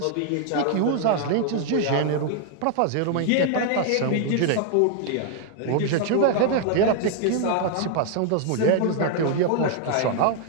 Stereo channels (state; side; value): different; both; correlation 0.00